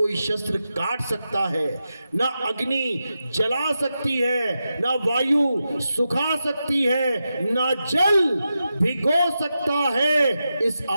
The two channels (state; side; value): inverted; both; correlation -0.89